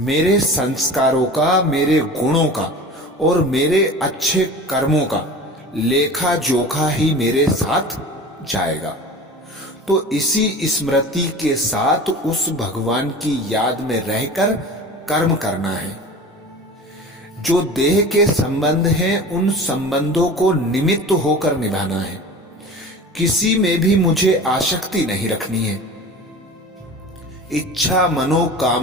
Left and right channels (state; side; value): normal; both; correlation 0.37